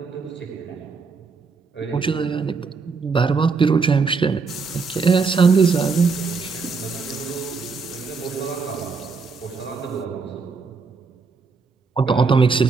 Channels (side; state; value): left; quieter; 4.8 dB